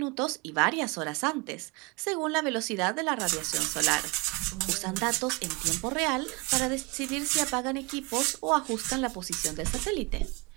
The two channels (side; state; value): left; quieter; 27.3 dB